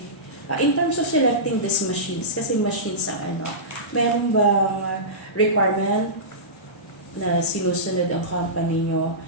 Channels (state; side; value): normal; both; correlation -0.19